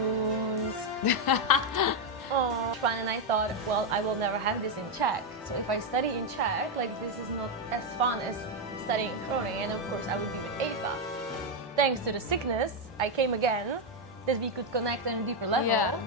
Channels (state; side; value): normal; both; correlation 0.03